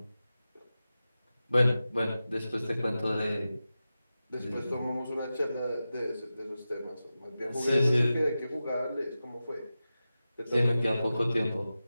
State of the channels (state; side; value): inverted; both; correlation -0.94